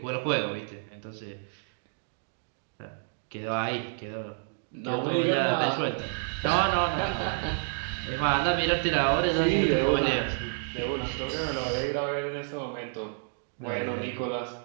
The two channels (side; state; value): left; silent; digital silence